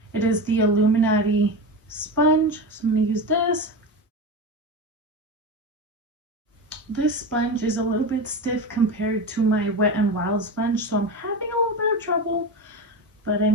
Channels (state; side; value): normal; both; correlation 0.22